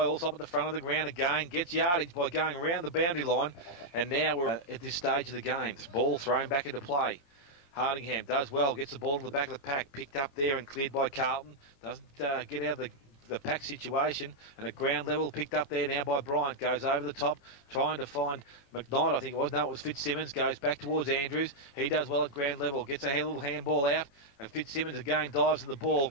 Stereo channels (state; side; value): late; right; 18 ms